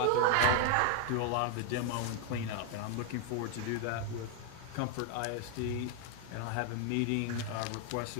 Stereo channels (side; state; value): both; different; correlation 0.00